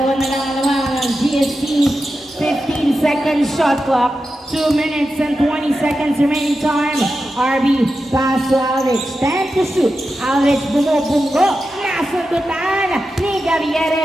na lang ang GST. 15 seconds shot clock. 2 minutes and 20 seconds remaining time. RB pass to Aldrich. 10 to shoot. Aldrich bumubunggo. Nasundutan ni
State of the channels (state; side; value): normal; both; correlation 0.90